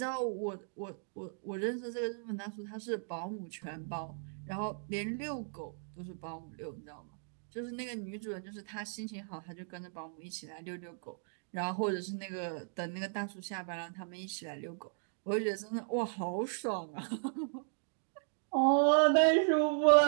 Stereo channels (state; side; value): silent; left; digital silence